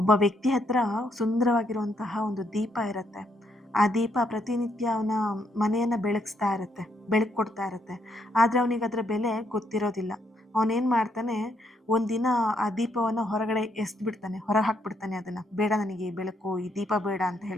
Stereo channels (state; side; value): normal; both; correlation 0.74